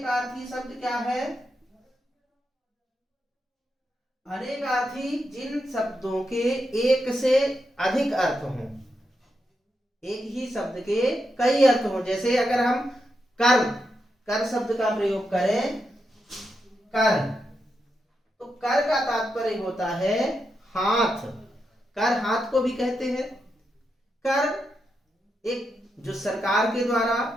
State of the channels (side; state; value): both; normal; correlation 0.85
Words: शब्द क्या है, अनेकार्थी जिन शब्दों के एक से अधिक अर्थ हों, एक ही शब्द के कई अर्थ हों। जैसे अगर हम कर शब्द का प्रयोग करें, कर, तो कर का तात्पर्य होता है हाथ। कर हाथ को भी कहते हैं। कर एक जो सरकार के द्वारा,